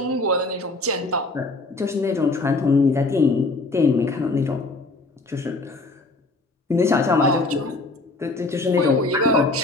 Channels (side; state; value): right; quieter; 3.1 dB